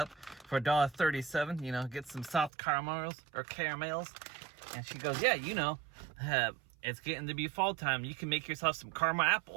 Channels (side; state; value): left; drops out; at 2.5 s